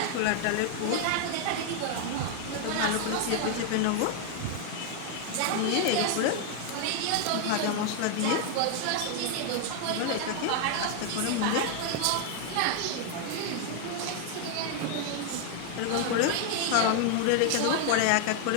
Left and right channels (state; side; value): different; both; correlation 0.00